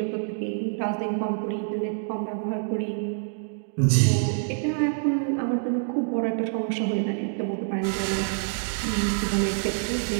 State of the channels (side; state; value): left; silent; digital silence